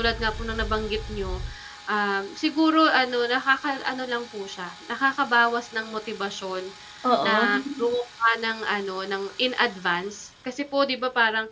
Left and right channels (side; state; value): both; identical; correlation 1.00